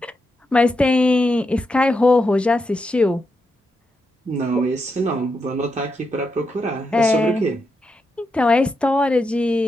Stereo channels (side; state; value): both; normal; correlation 0.84